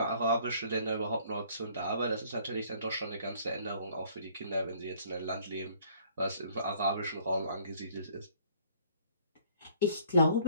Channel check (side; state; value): both; inverted; correlation -0.58